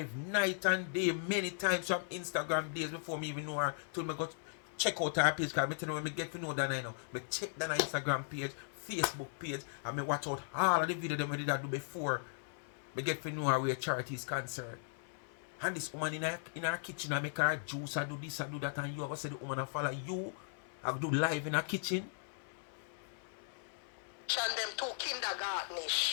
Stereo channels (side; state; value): right; silent; 53 dB below the other